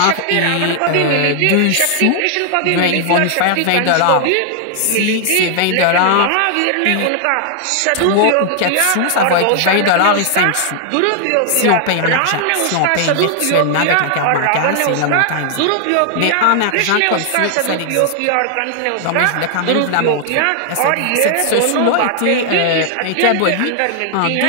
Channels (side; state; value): both; different; correlation 0.00